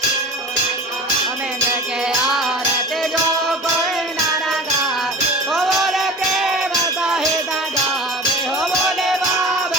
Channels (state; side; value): normal; both; correlation 0.35